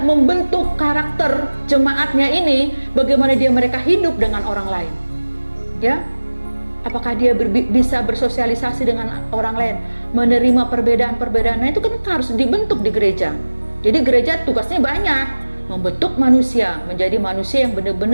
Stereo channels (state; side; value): inverted; both; correlation -1.00